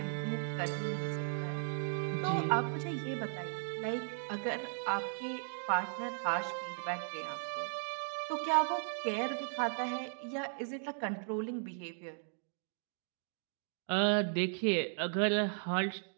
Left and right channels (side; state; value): left; silent; digital silence